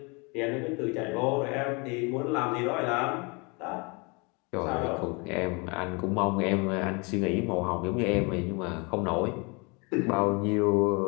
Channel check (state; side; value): quieter; right; 30.1 dB